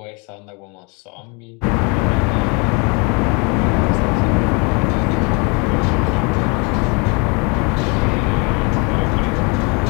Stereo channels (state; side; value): quieter; right; 31.5 dB